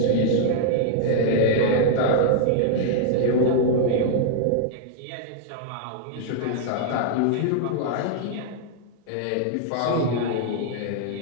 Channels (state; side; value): different; both; correlation -0.01